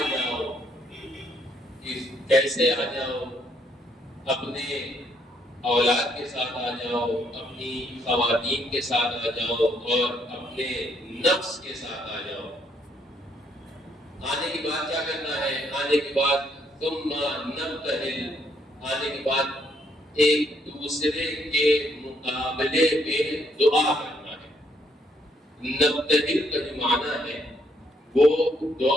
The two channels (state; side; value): normal; both; correlation 0.71